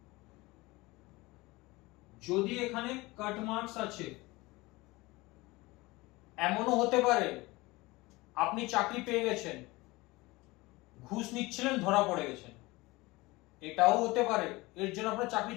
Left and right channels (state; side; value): quieter; right; 21.8 dB